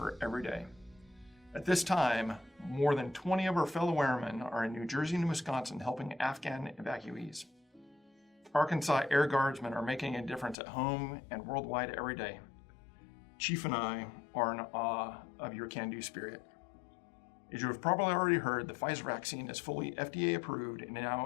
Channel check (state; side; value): drops out; right; at 10.6 s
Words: every day. At this time, more than 20 of our fellow airmen are in New Jersey and Wisconsin helping Afghan evacuees. Arkansas Air Guardsmen are making a difference at home and worldwide every day. Chief and I are in awe of your can-do spirit. As you have probably already heard, the Pfizer vaccine is fully FDA approved and